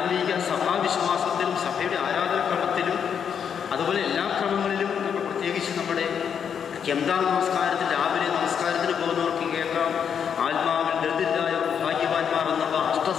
സഭാവിശ്വാസത്തിലും സഭയുടെ ആരാധനക്രമത്തിലും അതുപോലെ എല്ലാ ക്രമങ്ങളിലും നമ്മൾ പ്രത്യേകിച്ച് നമ്മുടെ കെന്താ നമസ്കാരത്തിൽ രാവിലെ നമസ്കാരത്തിന് പോകുന്നവർക്ക് കേൾക്കാം, ആത്മാവിൽ ദരിദ്രരായവർ ഭാഗ്യവാന്മാർ എന്നുള്ള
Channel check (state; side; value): quieter; right; 7.6 dB